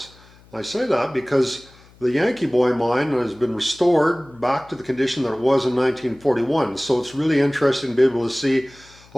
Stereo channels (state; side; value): noise; left; hum, 26 dB below the sound